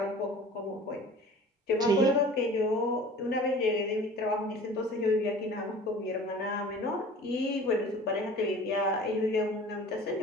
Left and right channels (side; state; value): both; normal; correlation 0.43